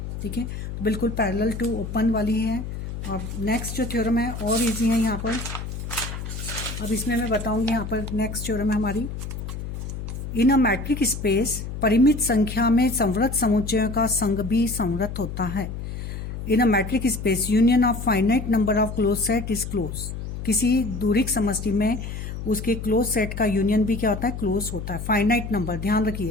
ठीक है। तो बिल्कुल पैरेलल टू ओपन वाली है। और नेक्स्ट जो थ्योरम है और इजी है यहाँ पर, अब इसमें मैं बताऊंगी। यहाँ पर नेक्स्ट थ्योरम है हमारी, इन अ मैट्रिक स्पेस परिमित संख्या में संवृत समुच्चयों का संघ भी संवृत होता है। In a metric space union of finite number of close set is close, किसी दूरिक समष्टि में उसके क्लोज सेट का यूनियन भी क्या होता है, क्लोज होता है। फाइनाइट नंबर, ध्यान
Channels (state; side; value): noise; left; hum, 7 dB below the sound